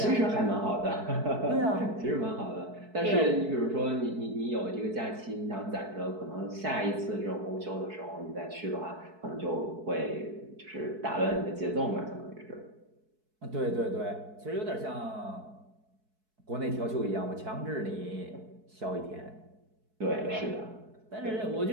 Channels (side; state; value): left; late; 4.6 ms